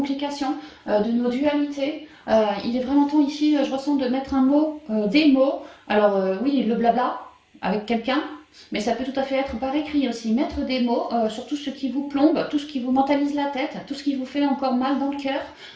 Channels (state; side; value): identical; both; correlation 1.00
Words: de nos dualités. Il est vraiment temps ici, je ressens, de mettre un mot, des mots. Alors oui, le blabla avec quelqu'un, mais ça peut tout à fait être par écrit aussi. Mettre des mots sur tout ce qui vous plombe, tout ce qui vous mentalise la tête, tout ce qui vous fait encore mal dans le cœur,